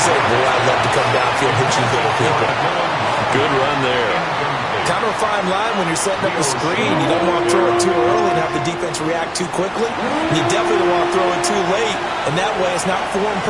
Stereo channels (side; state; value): both; identical; correlation 1.00